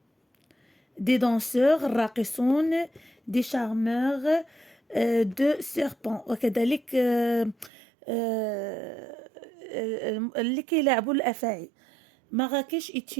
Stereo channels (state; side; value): drops out; left; at 7.7 s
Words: des danseurs, الراقصون, des charmeurs, de serpents. وكذلك اللي كيلعبوا الأفاعي. Marrakech est